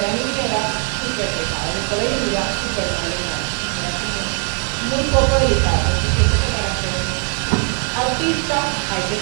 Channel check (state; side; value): quieter; left; 39.0 dB